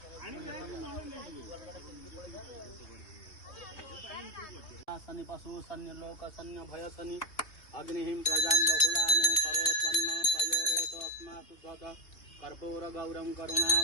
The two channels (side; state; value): right; late; 3.1 ms